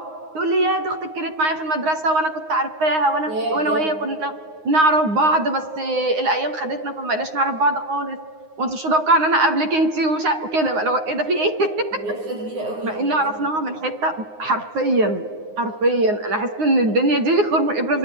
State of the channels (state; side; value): late; left; 9.6 ms